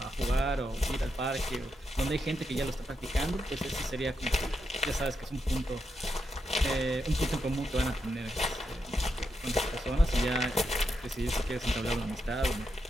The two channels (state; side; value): normal; both; correlation 0.84